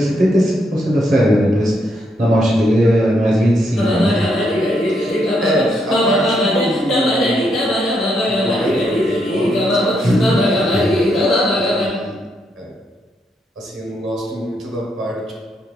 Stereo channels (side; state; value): both; normal; correlation 0.77